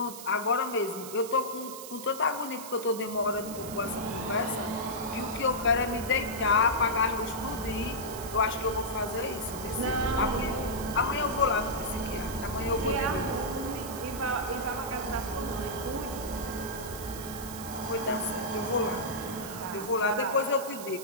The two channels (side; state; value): right; noise; hiss, 11 dB below the sound